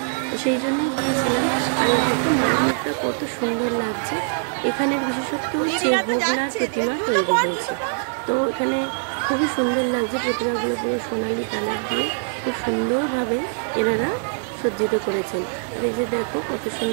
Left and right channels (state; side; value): silent; left; 61 dB below the other